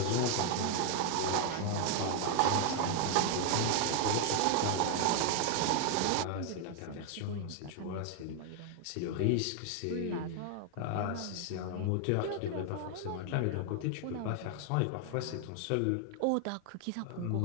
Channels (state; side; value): different; both; correlation 0.00